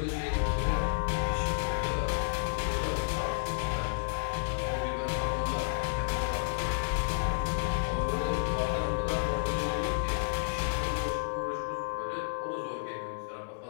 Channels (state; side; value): silent; right; digital silence